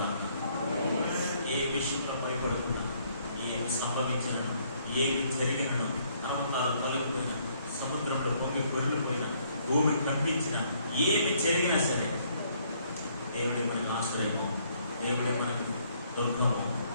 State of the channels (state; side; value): inverted; both; correlation -0.67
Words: ఏ విషయంలో భయపడుతున్నా, ఏమి సంభవించినా, ఏమి జరిగినా, నమ్మకాలు తొలగిపోయినా, సముద్రంలో పొంగి పొరిగిపోయినా, భూమి కంపించినా, ఏమి జరిగినా సరే దేవుడి మనకు ఆశ్రయము, దేవుడి మనకు దుర్గము,